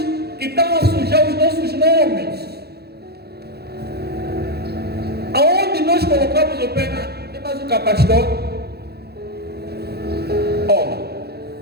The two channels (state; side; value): late; left; 0.47 ms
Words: que estão a sujar os nossos nomes. Aonde nós colocamos o pé, tem mais um pastor? Olha,